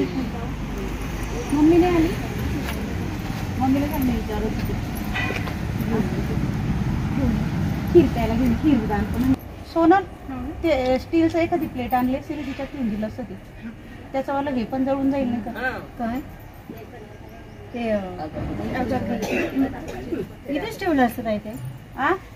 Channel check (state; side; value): identical; both; correlation 1.00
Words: मम्मी नाही आली? मम्मीला काय नाही विचारत होती. खीर प्यायला घेऊन खीर दान. सोनल ते स्टीलचं एखादी प्लेट आणली असेल तिच्यात ठेवून दिलं असतं ते त्याच्यावाला हे पण जळून जाईल नाही का? काय ते इथेच ठेवलं असतं काय ते